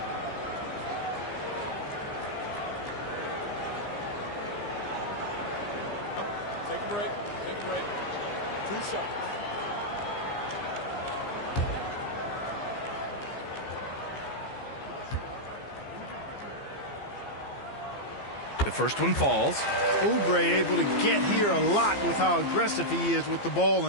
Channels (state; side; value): late; right; 15 ms